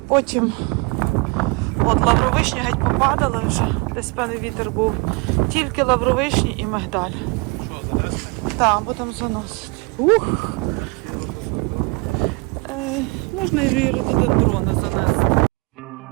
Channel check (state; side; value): quieter; left; 28.3 dB